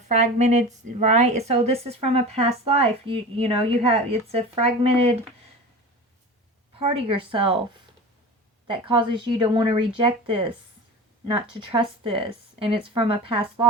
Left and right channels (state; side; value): normal; both; correlation 0.32